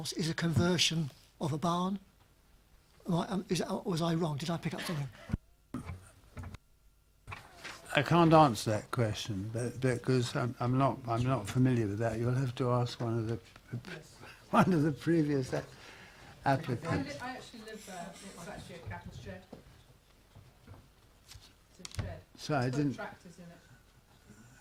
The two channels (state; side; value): identical; both; correlation 1.00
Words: is a conversion of a barn? Was I wrong? Did I pick up something? I can't answer that question, because I'm not familiar with that. You'll have to ask one of the previous applicants. I actually live there. It's actually a cattle shed. It's a shed. So I It's got didn't. tractors in it.